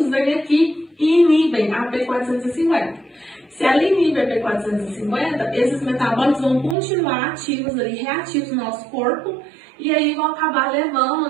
vêm aqui e inibem a P450. Se ela inibe a P450, esses metabólitos vão continuar ativos ali, reativos no nosso corpo, e aí vão acabar levando,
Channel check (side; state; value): left; drops out; at 6.8 s